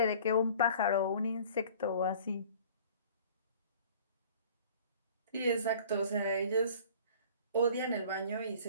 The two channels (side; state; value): both; inverted; correlation -0.48